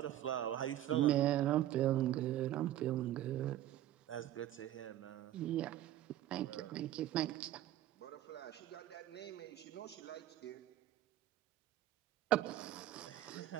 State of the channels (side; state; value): left; quieter; 13.0 dB